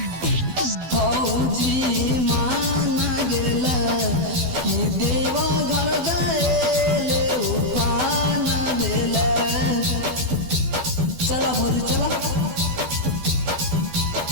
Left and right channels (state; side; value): late; left; 12 ms